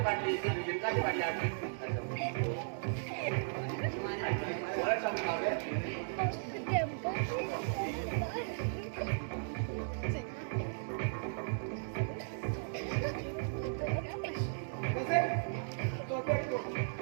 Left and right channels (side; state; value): left; silent; digital silence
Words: बाटली आनी जिंकाची बाटली हाडली बरें सांगून हांवें कसे तो देखो